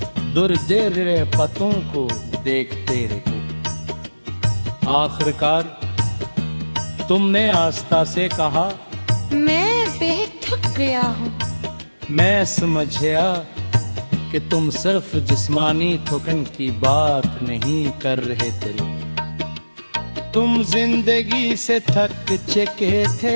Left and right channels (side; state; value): both; inverted; correlation -1.00